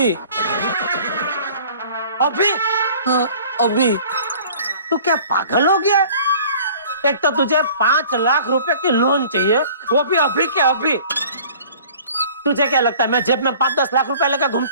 अभी? हाँ अभी। तू क्या पागल हो गया? एक तो तुझे 5 लाख रुपए की लोन चाहिए, वो भी अभी के अभी। तुझे क्या लगता है मैं जेब में 5-10 लाख रुपए लेकर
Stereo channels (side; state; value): both; inverted; correlation -0.48